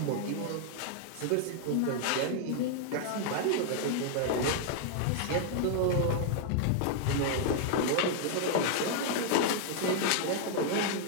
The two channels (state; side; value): different; both; correlation 0.00